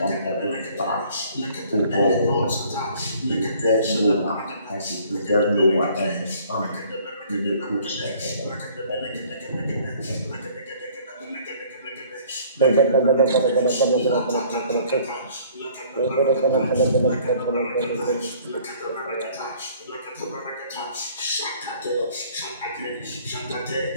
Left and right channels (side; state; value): both; inverted; correlation -0.56